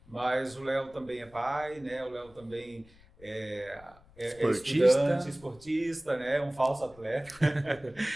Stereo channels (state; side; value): noise; left; rumble, 26 dB below the sound